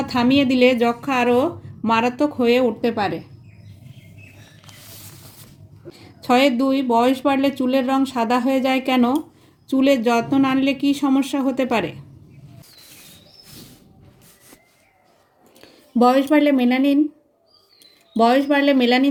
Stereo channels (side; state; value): both; identical; correlation 1.00